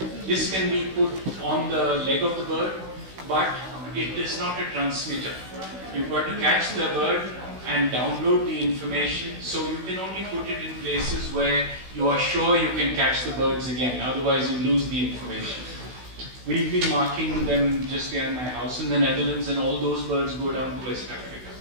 This can be put on the leg of the bird, but it is not a transmitter. You've got to catch the bird and download the information, so you can only put it in places where you are sure you can catch the birds again, otherwise you lose the information. We've been marking them just behind my house in the Netherlands, and all those birds go down to West Africa.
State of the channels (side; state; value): left; late; 16 ms